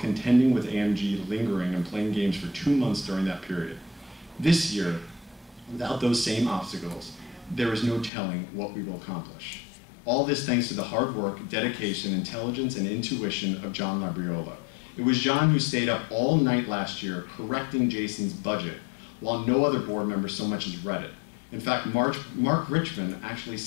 with AMG lingering and playing games for 2 months during that period. This year, without those same obstacles, there is no telling what we will accomplish. All this thanks to the hard work, dedication, intelligence, and intuition of John Labriola. It was John who stayed up all night last year correcting Jason's budget, while no other board member so much as read it. In fact, Mark Richmond actually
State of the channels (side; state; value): right; drops out; at 8.1 s